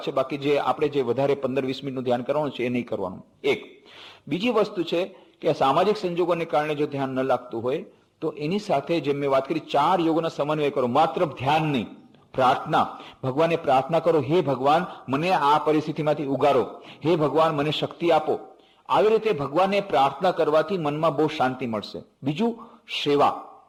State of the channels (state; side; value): identical; both; correlation 1.00